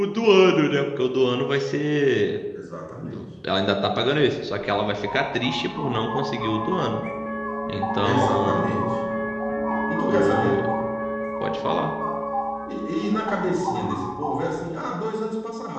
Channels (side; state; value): both; identical; correlation 1.00